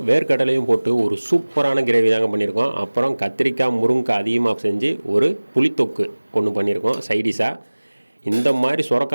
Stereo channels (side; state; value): both; inverted; correlation -1.00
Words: வேர்க்கடலையும் போட்டு ஒரு சூப்பரான கிரேவி தாங்க பண்ணியிருக்கோம். அப்புறம் கத்திரிக்காய் முருங்கைக்காய் அதிகமாக செஞ்சு ஒரு புளித்தொக்கு ஒன்று பண்ணியிருக்கோம் சைடிஷாக. இந்த மாதிரி